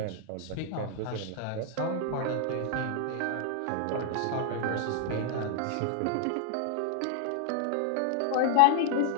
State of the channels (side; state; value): both; different; correlation 0.00